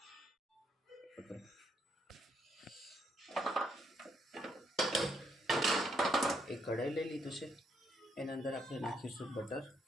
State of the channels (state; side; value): normal; both; correlation 0.75